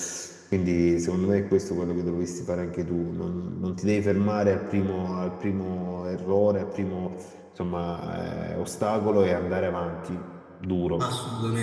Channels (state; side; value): identical; both; correlation 1.00